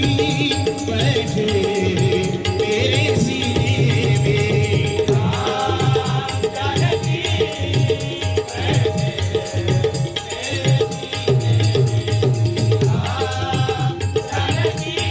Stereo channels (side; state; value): both; identical; correlation 1.00